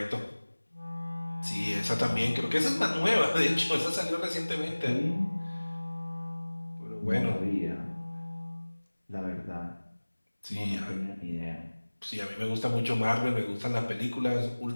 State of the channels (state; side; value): inverted; both; correlation -1.00